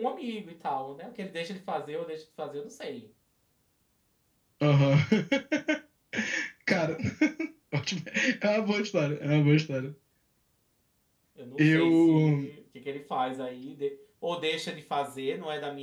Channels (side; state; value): both; identical; correlation 1.00